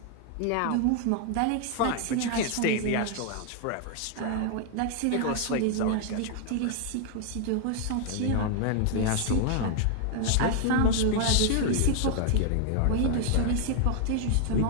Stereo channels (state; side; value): different; both; correlation 0.00